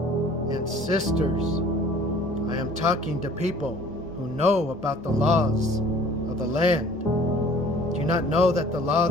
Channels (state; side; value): normal; both; correlation 0.51